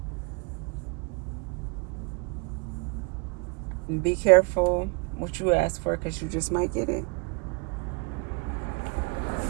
Be careful what you ask for, because you just might get it.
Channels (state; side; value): quieter; left; 31.9 dB